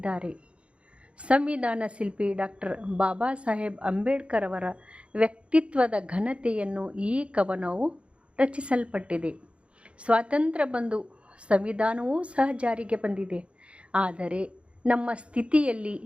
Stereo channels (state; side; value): late; left; 0.060 ms